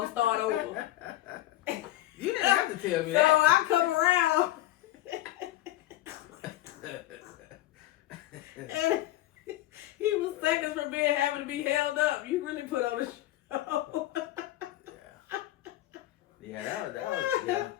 start over. You didn't have to tell me so that. So I come around. And he was seconds from having to be held up. You really put on a show. Yeah, that was yeah.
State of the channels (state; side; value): quieter; right; 15.1 dB